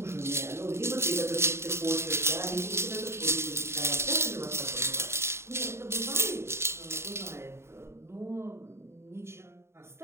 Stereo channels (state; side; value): late; left; 0.13 ms